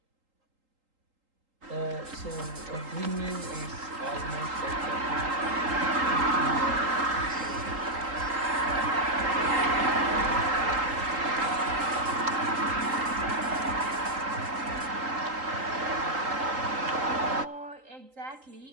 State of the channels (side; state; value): left; late; 3.8 ms